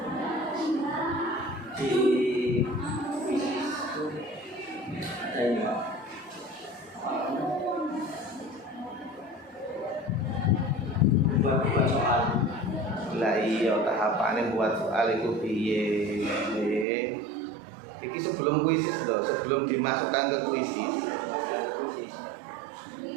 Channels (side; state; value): left; drops out; at 16.9 s